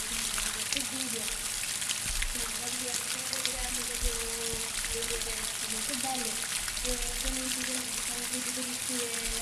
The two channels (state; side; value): identical; both; correlation 1.00